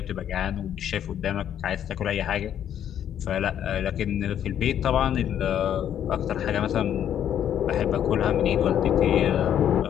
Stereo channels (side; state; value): right; quieter; 10.0 dB